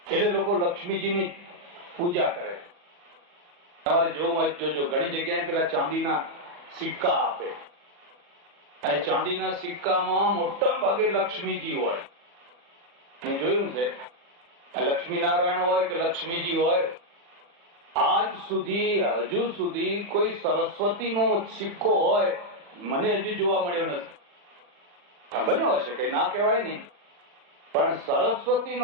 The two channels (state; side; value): late; left; 40 ms